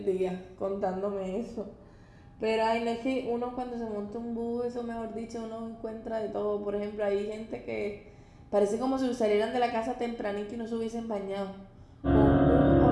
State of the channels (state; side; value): identical; both; correlation 1.00